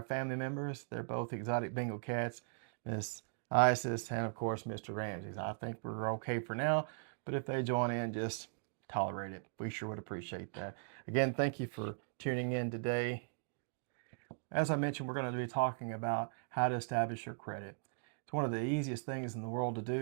family members. They're both exotic Bengal cats, Miss Isis and, of course, Mr. Ramses. I think we're okay for now, but if they join in, just tolerate it. We sure would appreciate that. Again, thank you for tuning in today. As I mentioned, we're going to be talking about how to establish your credit. It's one of the easiest things in the world to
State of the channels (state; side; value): silent; left; digital silence